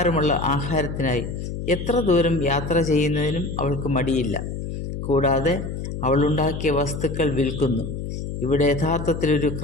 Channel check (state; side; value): noise; left; hum, 6 dB below the sound